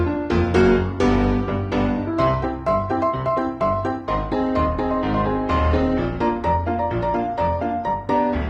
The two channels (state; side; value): identical; both; correlation 1.00